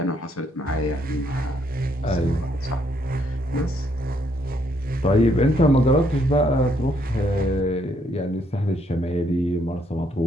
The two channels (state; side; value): normal; both; correlation 0.71